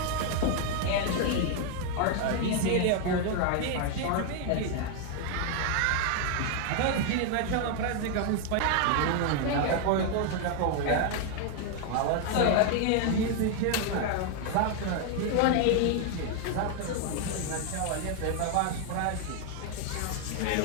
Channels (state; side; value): different; both; correlation 0.00